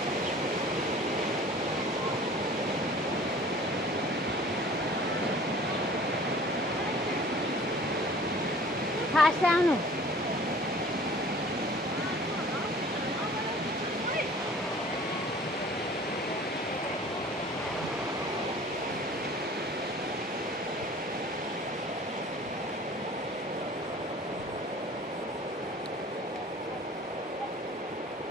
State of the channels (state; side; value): normal; both; correlation 0.48